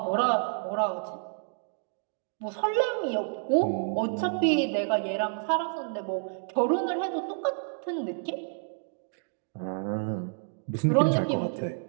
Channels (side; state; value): left; silent; digital silence